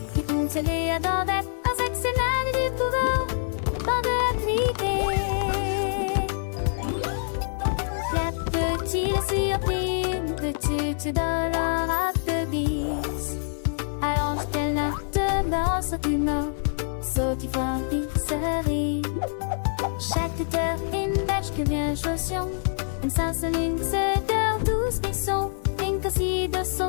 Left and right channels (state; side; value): silent; right; 61 dB below the other